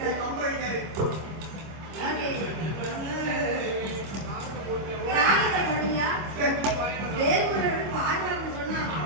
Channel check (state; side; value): late; left; 25 ms